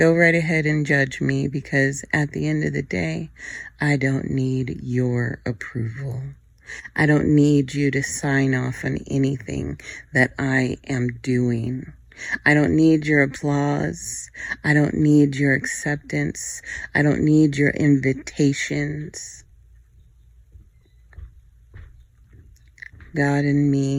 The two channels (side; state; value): both; identical; correlation 1.00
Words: right ahead and judge me, because at the end of the day, I don't need your approval. I don't need you to sign off on anything that I am doing. I don't need your applause. I don't need your acceptance. I don't need your invitations. God and